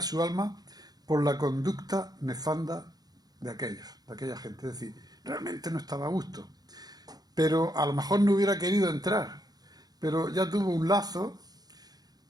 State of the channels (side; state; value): left; late; 0.19 ms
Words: su alma por la conducta nefanda de aquella gente. Es decir, realmente no estaba a gusto. Pero a lo mejor no hubiera querido entrar. Pero ya tuvo un lazo